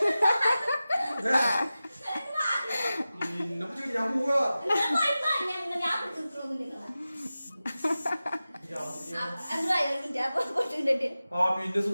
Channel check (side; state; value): both; inverted; correlation -0.95